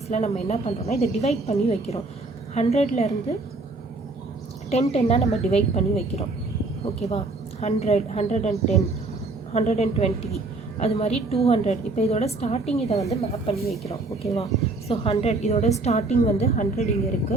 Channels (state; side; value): quieter; left; 3.3 dB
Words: நம்ம என்ன பண்ணுறோம்னா இதை டிவைட் பண்ணி வைக்கிறோம். 100லேருந்து 10 நம்ம டிவைட் பண்ணி வைக்கிறோம். ஓகேவா, 100, 110, 120 அது மாதிரி 200. இப்போ இதோட ஸ்டார்டிங் இதை வந்து மேப் பண்ணி வைக்கிறோம். ஓகேவா, ஸோ 100 இதோட ஸ்டார்டிங் வந்து 100 இங்கே